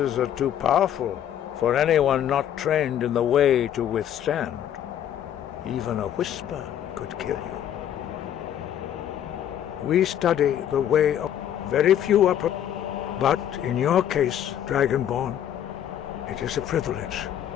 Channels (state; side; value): quieter; right; 10.4 dB